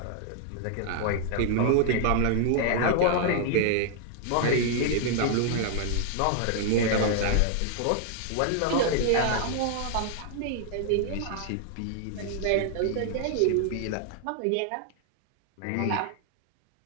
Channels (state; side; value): different; both; correlation 0.00